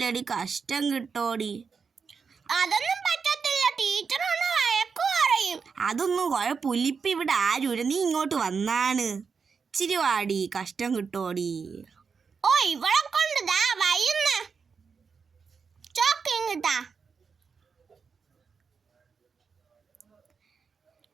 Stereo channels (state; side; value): quieter; left; 5.6 dB